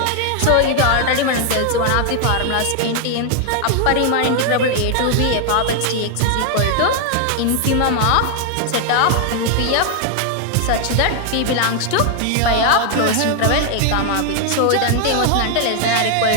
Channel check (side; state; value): both; different; correlation 0.00